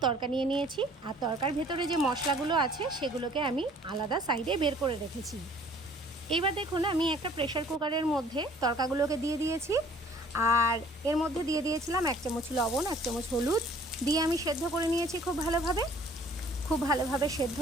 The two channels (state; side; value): normal; both; correlation 0.55